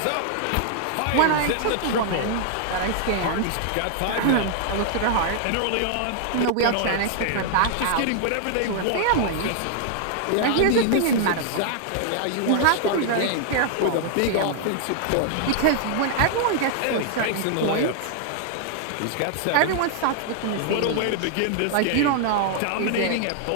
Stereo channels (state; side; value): different; both; correlation 0.00